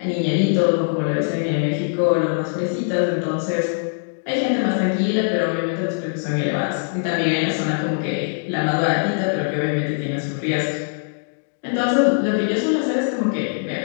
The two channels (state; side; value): silent; right; digital silence